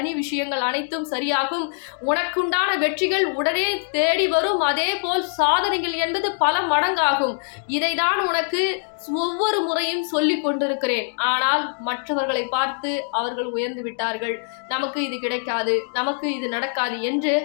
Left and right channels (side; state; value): right; silent; digital silence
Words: விஷயங்கள் அனைத்தும் சரியாகும். உனக்குண்டான வெற்றிகள் உடனே தேடி வரும். அதே போல் சாதனைகள் என்பது பல மடங்காகும். இதைதான் உனக்கு ஒவ்வொரு முறையும் சொல்லிக் கொண்டிருக்கிறேன். ஆனால் மற்றவர்களை பார்த்து அவர்கள் உயர்ந்து விட்டார்கள், நமக்கு இது கிடைக்காது, நமக்கு இது நடக்காது என்று